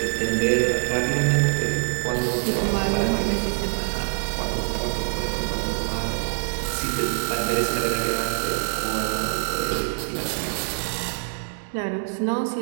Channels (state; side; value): silent; left; digital silence